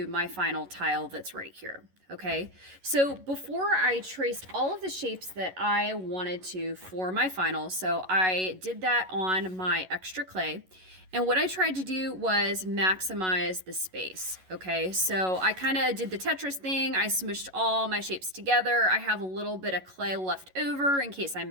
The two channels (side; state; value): left; late; 11 ms